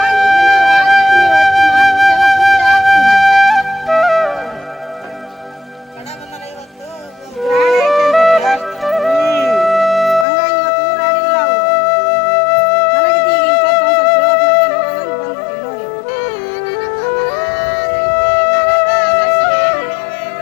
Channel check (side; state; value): right; drops out; at 10.2 s